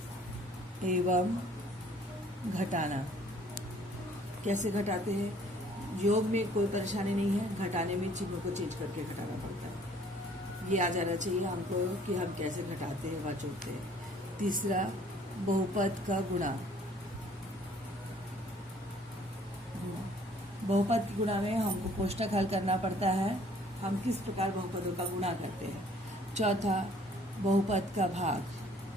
एवं घटाना। कैसे घटाते हैं? योग में कोई परेशानी नहीं है, घटाने में चिन्हों को चेंज करके घटाना पड़ता है। ये आ जाना चाहिए हमको कि हम कैसे घटाते हैं व जोड़ते हैं। तीसरा बहुपद का गुणा। बहुपद के गुणा में हमको कोष्टक हल करना पड़ता है, हम किस प्रकार बहुपदों का गुणा करते हैं। चौथा बहुपद का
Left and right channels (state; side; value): normal; both; correlation 0.57